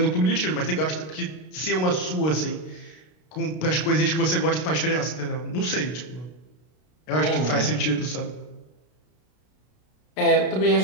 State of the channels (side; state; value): right; late; 32 ms